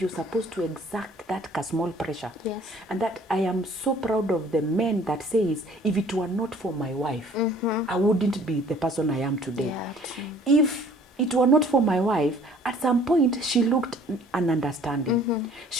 supposed to exact that small pressure. And that I am so proud of the men that says, if it were not for my wife, I wouldn't be the person I am today. If it were not for my wife, at some point she looked ununderstanding.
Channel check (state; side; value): normal; both; correlation 0.55